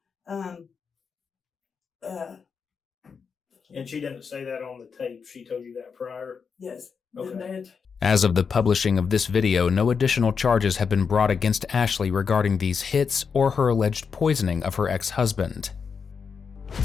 and she didn't say that on the tape. She told you that prior? Yes. Okay. As of the publishing of this video, no additional charges have been brought against Ashley regarding these hits or her alleged poisoning of her ex-husband.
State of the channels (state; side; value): quieter; right; 5.9 dB